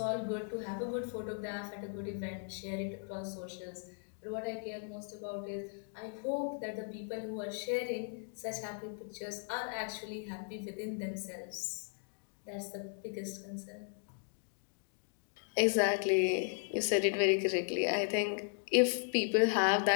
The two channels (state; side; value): silent; right; 53 dB below the other